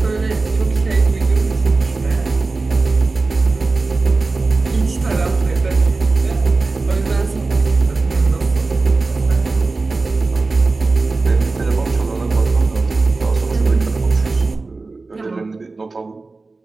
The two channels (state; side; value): quieter; left; 3.7 dB